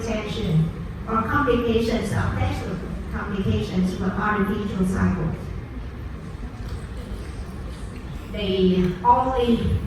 or complications of sexual complications with artificial cycles. The only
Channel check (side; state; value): both; identical; correlation 1.00